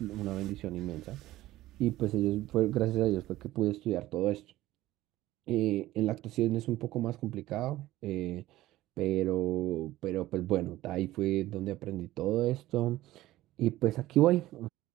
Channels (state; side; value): quieter; left; 16.1 dB